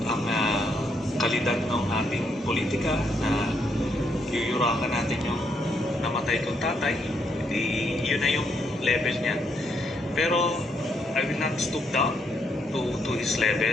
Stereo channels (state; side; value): normal; both; correlation 0.75